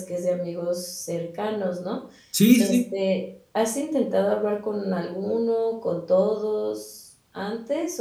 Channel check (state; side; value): identical; both; correlation 1.00